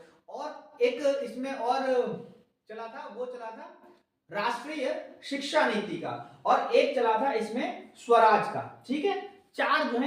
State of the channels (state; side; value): identical; both; correlation 1.00